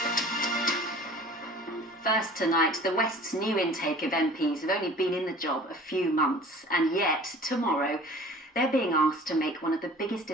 First tonight, the West's new intake of MPs have only been in the job a few months, and yet tomorrow they're being asked to make one of the biggest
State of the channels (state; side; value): normal; both; correlation 0.46